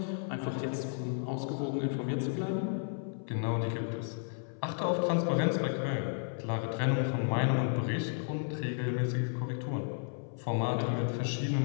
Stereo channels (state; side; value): silent; right; 56 dB below the other